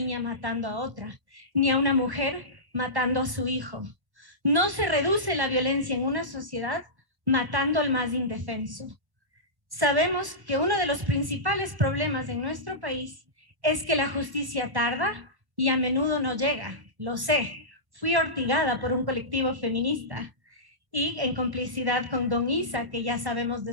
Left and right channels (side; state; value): left; late; 1.0 ms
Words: matando a otra, ni a una mujer matando a su hijo. No se reduce la violencia en una sociedad matando al más indefenso. Sabemos que uno de los principales problemas en nuestro país es que la justicia tarda y a menudo no llega. Lo sé, fui hostigada por un colectivo feminista y en complicidad con Don Isa, que ya sabemos